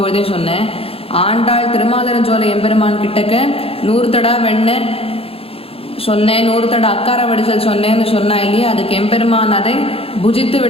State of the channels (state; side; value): late; right; 0.28 ms